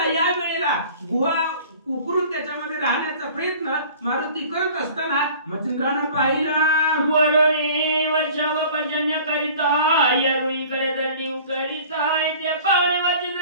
या वेळेला गुहा उकरून त्याच्यामध्ये राहण्याचा प्रयत्न मारुती करत असताना मच्छिंद्रानं पाहिलं. वरुणी वर्षाव पर्जन्य करिता येरुईकडे दंडी करिता, ते पावणे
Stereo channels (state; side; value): inverted; both; correlation -0.46